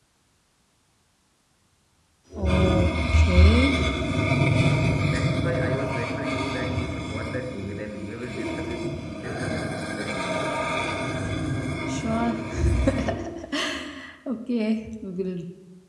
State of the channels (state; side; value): identical; both; correlation 1.00